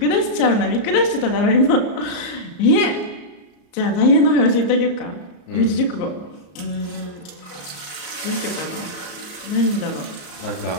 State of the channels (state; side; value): late; right; 34 ms